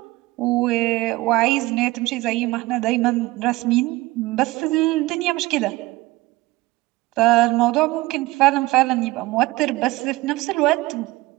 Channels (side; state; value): left; quieter; 19.9 dB